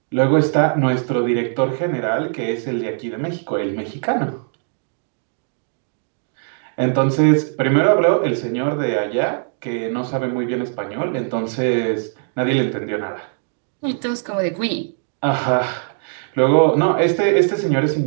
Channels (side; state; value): left; silent; digital silence